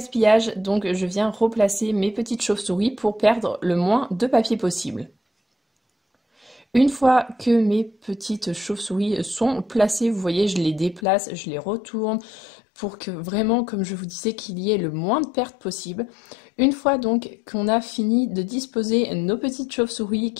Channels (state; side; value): drops out; right; at 11.0 s